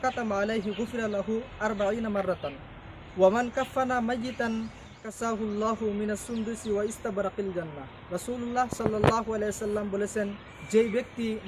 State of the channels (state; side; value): identical; both; correlation 1.00